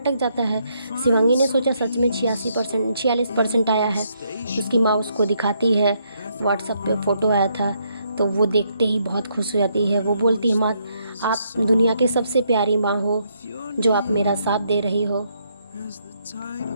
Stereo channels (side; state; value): both; inverted; correlation -0.74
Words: जाता है। शिवांगी ने सोचा सच में 46% आया है। उसकी माँ उसको दिखाती है, व्हाट्सएप पे फ़ोटो आया था, तो वो देखते ही बहुत खुश हो जाती है। वो बोलती है, माँ आप दुनिया की सबसे प्यारी माँ हो, जो आप मेरा साथ दे रही हो।